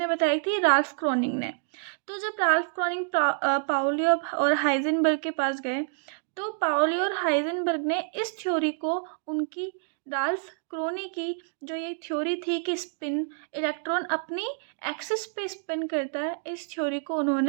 बताई थी? राल्फ क्रोनिंग ने। तो जब राल्फ क्रोनिंग पाउली और हाइजेनबर्ग के पास गए तो पाउली और हाइजेनबर्ग ने इस थ्योरी को उनकी राल्फ क्रोनी की जो ये थ्योरी थी कि स्पिन इलेक्ट्रॉन अपनी एक्सिस पे स्पिन करता है, इस थ्योरी को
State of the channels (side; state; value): left; silent; digital silence